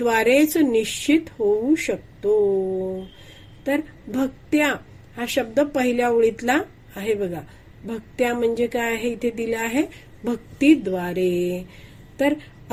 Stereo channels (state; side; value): identical; both; correlation 1.00